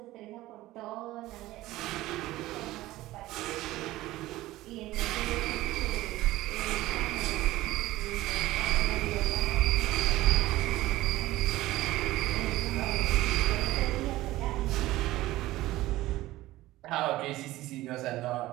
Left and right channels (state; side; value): quieter; left; 16.9 dB